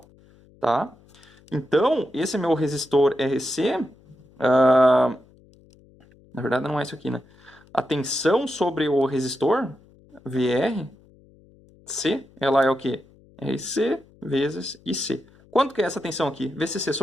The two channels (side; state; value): left; noise; hum, 28 dB below the sound